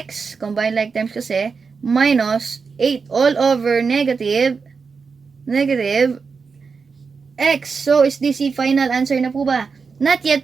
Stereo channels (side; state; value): left; quieter; 5.1 dB